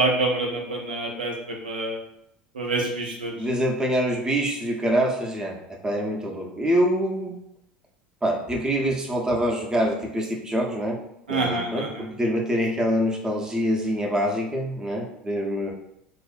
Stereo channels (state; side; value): normal; both; correlation 0.56